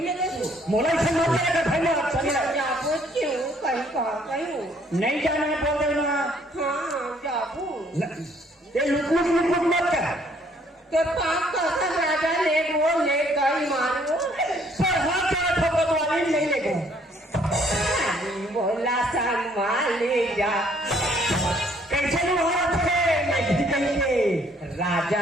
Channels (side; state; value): both; normal; correlation 0.64